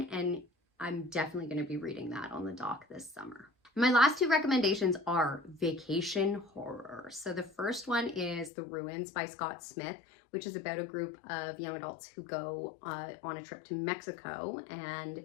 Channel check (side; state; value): right; drops out; at 8.5 s